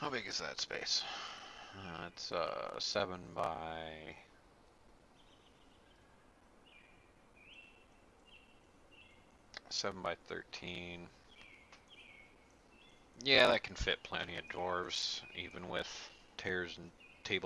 big is that space? It's 7 by 13. Yeah, that can fit plenty of dwarves, even with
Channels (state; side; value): identical; both; correlation 1.00